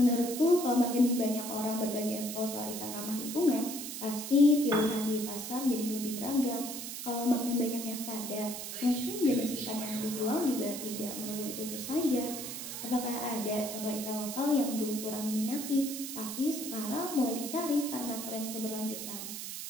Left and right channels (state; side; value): noise; right; hiss, 7 dB below the sound